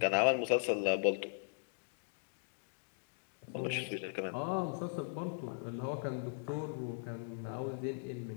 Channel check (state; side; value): silent; right; digital silence